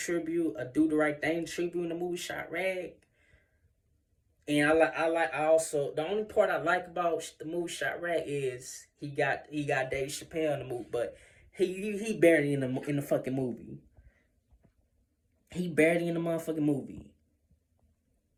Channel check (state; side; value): identical; both; correlation 1.00